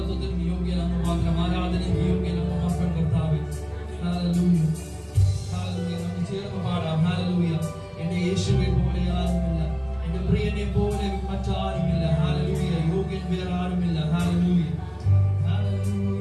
യോഗ്യൻ അങ്ങ് മാത്രം. ആരാധനയ്ക്ക് യോഗ്യൻ അങ്ങ് മാത്രം കർത്താവേ. Hallelujah, hallelujah. നമുക്ക് ചേർന്ന് പാടാം. ഹല്ലേലൂയ. എന്റെ യേശുവെ പോലെ ആരുമില്ല, എന്റെ പ്രിയനെ പോലെ മറ്റാരുമില്ല. ഹല്ലേലൂയ. യോഗ്യൻ വേറെ ആരുമില്ല. ഹല്ലേലൂയ.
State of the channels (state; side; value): identical; both; correlation 1.00